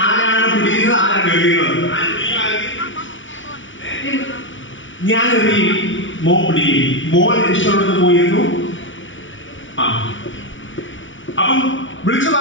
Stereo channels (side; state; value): right; late; 0.56 ms